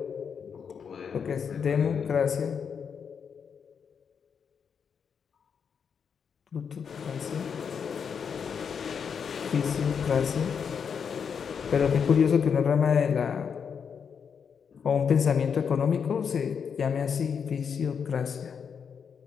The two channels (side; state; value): right; quieter; 6.8 dB